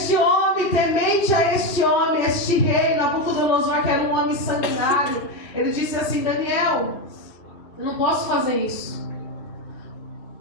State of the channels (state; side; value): late; right; 2.7 ms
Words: homem, temente a este homem, este rei, Nabucodonosor, que era um homem sanguinário, ele disse assim: Daniel, eu não posso fazer isso.